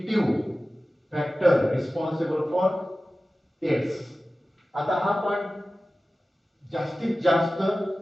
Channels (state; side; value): normal; both; correlation 0.95